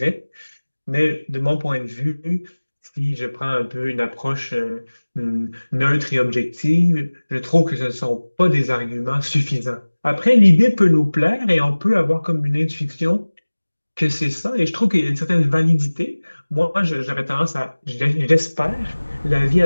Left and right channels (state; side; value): inverted; both; correlation -1.00